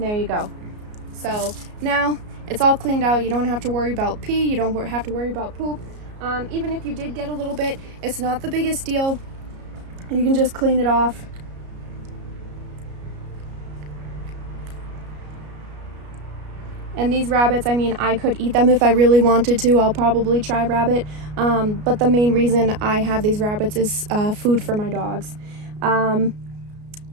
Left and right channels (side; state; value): left; late; 33 ms